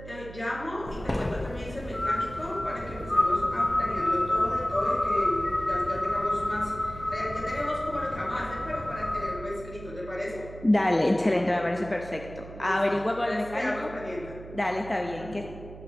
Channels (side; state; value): right; noise; hum, 15 dB below the sound